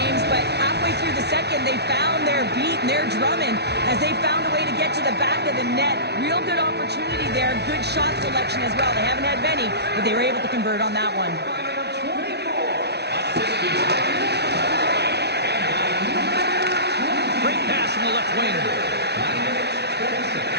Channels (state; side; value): late; left; 0.49 ms